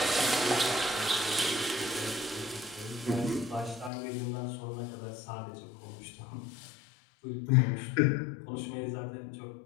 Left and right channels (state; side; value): drops out; right; at 3.9 s